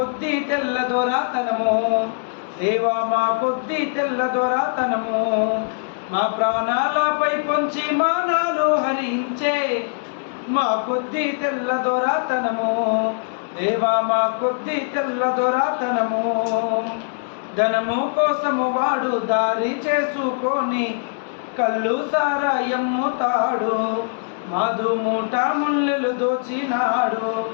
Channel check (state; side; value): silent; right; digital silence